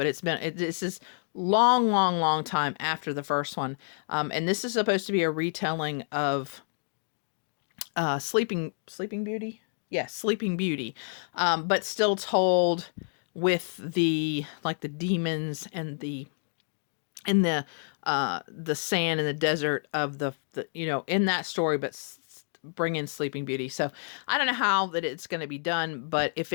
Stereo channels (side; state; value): right; silent; 59 dB below the other